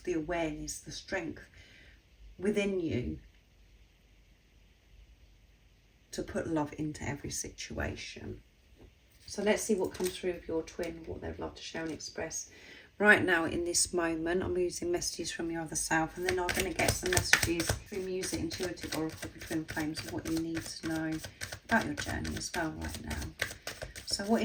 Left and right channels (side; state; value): both; identical; correlation 1.00